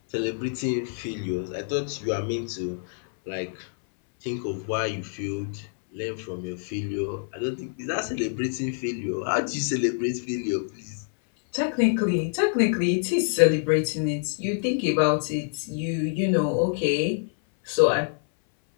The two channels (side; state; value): right; silent; 58 dB below the other